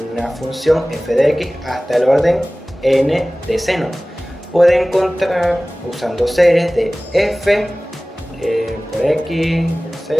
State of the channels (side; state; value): both; normal; correlation 0.98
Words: función f de x hasta el orden n de seno. Puede encontrar usando series de f por x,